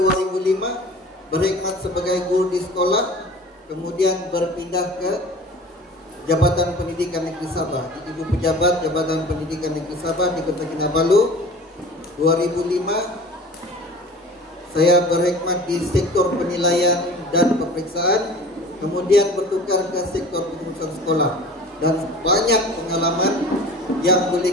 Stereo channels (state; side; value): normal; both; correlation 0.41